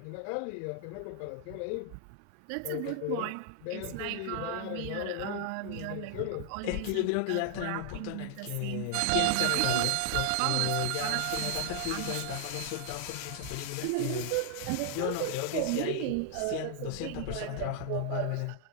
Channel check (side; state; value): both; different; correlation 0.00